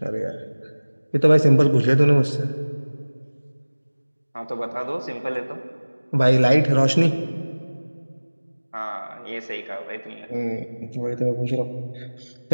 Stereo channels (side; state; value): both; inverted; correlation -1.00